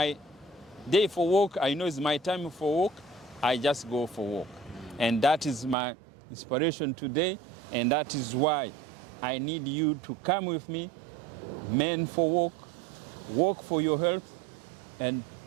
day for walk. I know it's my time for walk. I just go for walk. And that is my inspiration today. And that is why I need you to come with me, men for walk for your health, and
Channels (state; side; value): drops out; left; at 5.8 s